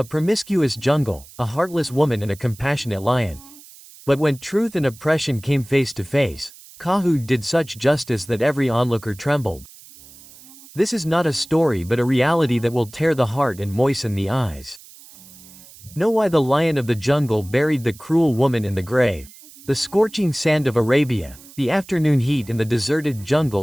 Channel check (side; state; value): right; noise; hiss, 21 dB below the sound